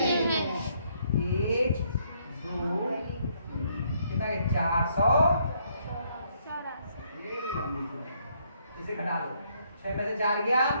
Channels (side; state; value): both; inverted; correlation -0.70